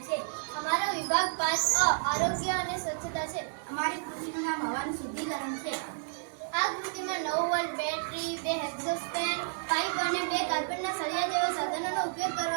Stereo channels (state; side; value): silent; left; digital silence